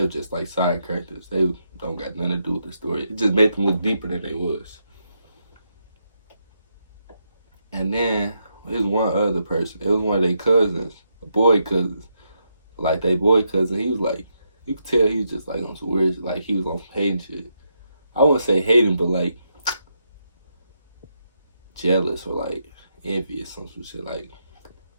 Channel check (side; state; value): both; inverted; correlation -0.81